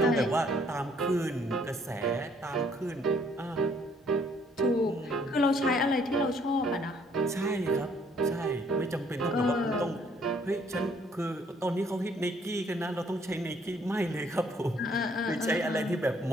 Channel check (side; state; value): both; normal; correlation 0.64